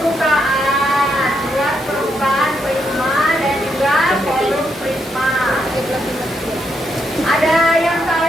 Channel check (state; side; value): normal; both; correlation 0.79